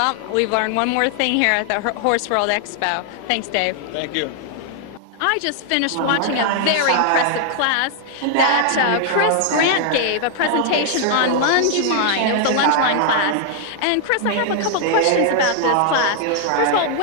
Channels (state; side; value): different; both; correlation 0.00